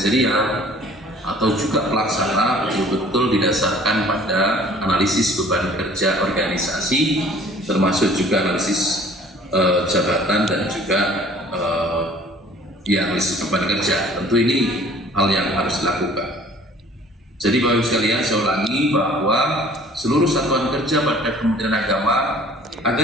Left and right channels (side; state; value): both; normal; correlation 0.52